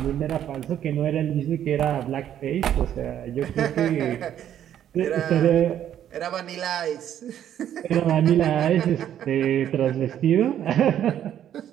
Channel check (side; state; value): left; quieter; 10.5 dB